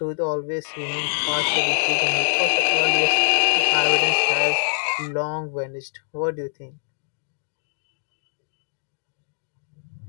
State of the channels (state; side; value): silent; right; digital silence